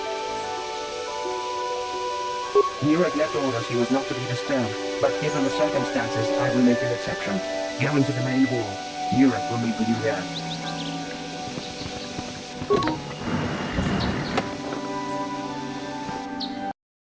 Nurek left orders he was not to be disturbed, but given the circumstances, I will make an exception. Go into the main hall. Nurek will meet with you there.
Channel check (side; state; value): both; identical; correlation 1.00